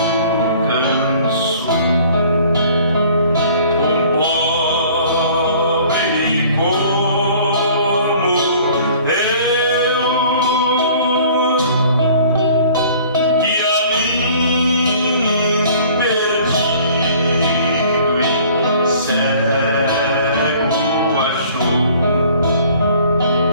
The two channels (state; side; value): inverted; both; correlation -0.52